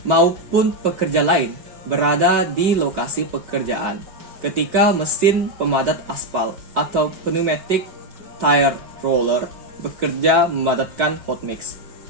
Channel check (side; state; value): left; late; 5.3 ms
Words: maupun pekerja lain berada di lokasi pekerjaan ketika mesin pemadat aspal atau pneumatic tire roller bekerja memadatkan hot mix.